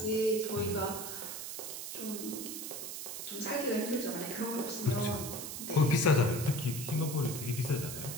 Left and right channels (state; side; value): noise; right; hiss, 6 dB below the sound